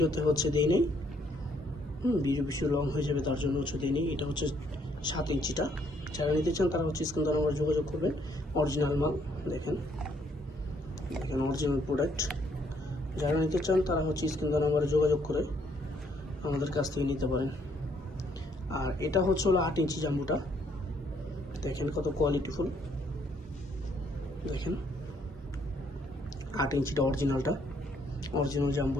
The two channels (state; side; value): normal; both; correlation 0.68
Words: হচ্ছে দেই নেই। ভিডিও বেশি লং হয়ে যাবে তার জন্য হচ্ছে দিইনি। এটা হচ্ছে 7 ইঞ্চিটা। যারা নিতে চান তারা হচ্ছে স্ক্রিন নাম্বার যোগাযোগ করবেন। অরিজিনাল মাল, দেখেন দেখেন অরিজিনাল প্রোডাক্ট। যারা নিতে চান তারা হচ্ছে স্ক্রিন নাম্বারে যোগাযোগ করে আমাদের কাছ থেকে নিতে পারেন। আর এটা হচ্ছে হলো 8 ইঞ্চি জাম্বুটা, দেখেন কত কোয়ালিটিফুল। দেখেন 8 ইঞ্চিটা অরিজিনালটা, অরিজিনাল